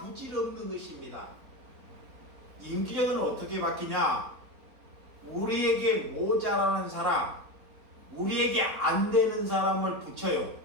것입니다. 인격은 어떻게 바뀌냐? 우리에게 모자라는 사람, 우리에게 안 되는 사람을 붙여요.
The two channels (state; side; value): late; left; 3.9 ms